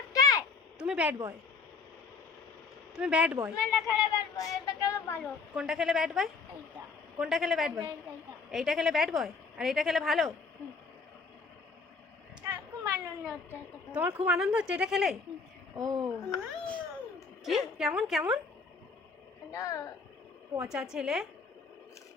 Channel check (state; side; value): quieter; right; 4.7 dB